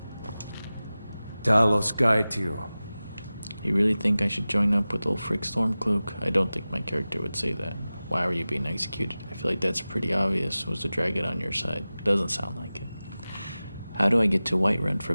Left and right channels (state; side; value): inverted; both; correlation -0.96